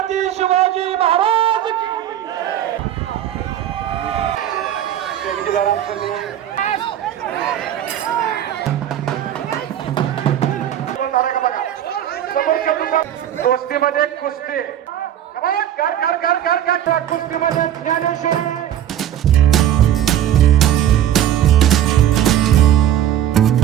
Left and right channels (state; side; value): quieter; left; 10.9 dB